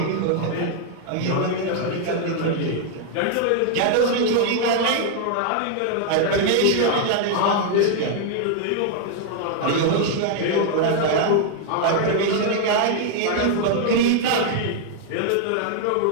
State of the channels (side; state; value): both; different; correlation 0.00